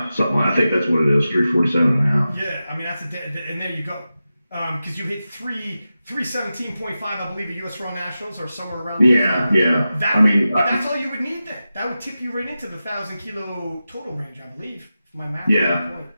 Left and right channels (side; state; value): both; inverted; correlation -0.93